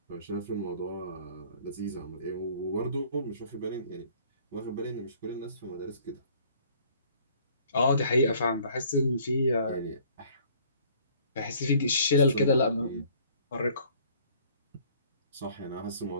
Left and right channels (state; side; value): inverted; both; correlation -0.56